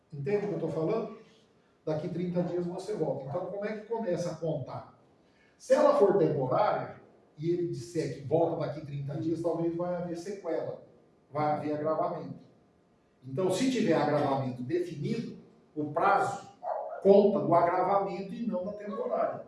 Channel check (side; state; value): both; identical; correlation 1.00